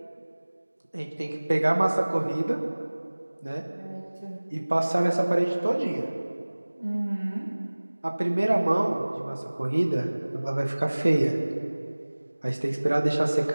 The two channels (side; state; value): both; inverted; correlation -1.00